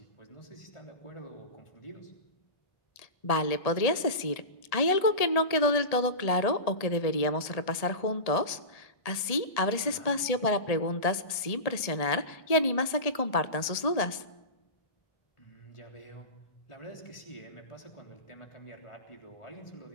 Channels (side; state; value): right; late; 1.7 ms